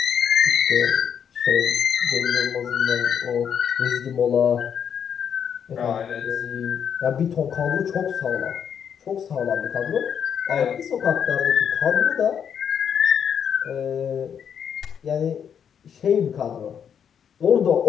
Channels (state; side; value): quieter; right; 8.0 dB